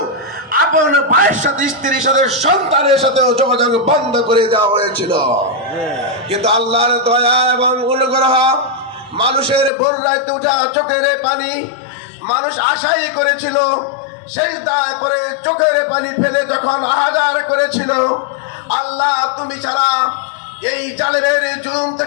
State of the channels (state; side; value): drops out; right; at 9.7 s